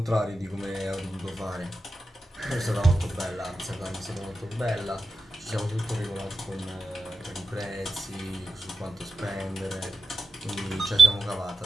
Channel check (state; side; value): normal; both; correlation 0.92